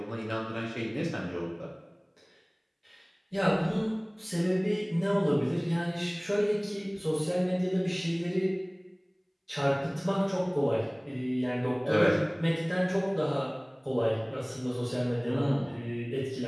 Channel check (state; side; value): identical; both; correlation 1.00